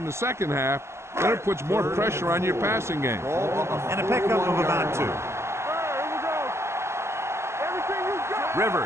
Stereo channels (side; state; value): left; late; 0.13 ms